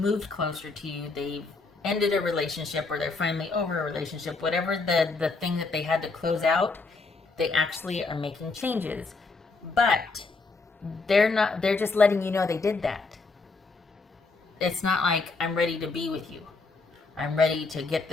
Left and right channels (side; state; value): right; quieter; 3.9 dB